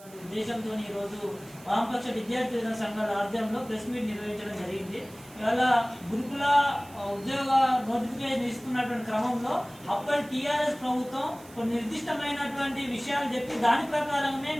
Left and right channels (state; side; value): noise; right; hiss, 22 dB below the sound